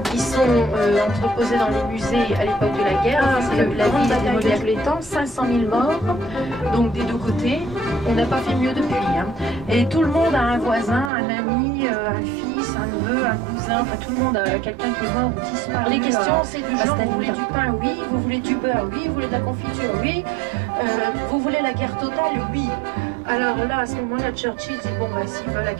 qui sont entreposés dans les musées à l'époque de la guerre. C'est la grande bataille de tous les temps, 500 000 morts, donc des deux côtés. On n'a pas fait mieux depuis. Et tout le monde a un voisin, un ami, un fils, un neveu, un cousin, enfin tout le monde a quelqu'un qui est mort ou disparu. Les questions c'est du genre, vous voulez du pain? Oui. Vous voulez du beurre? Oui. Vous voulez de la confiture? Oui. Vous voulez la guerre totale? Oui. Alors là, à ce moment-là, Churchill dit bon bah s'ils veulent la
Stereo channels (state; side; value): drops out; left; at 11.1 s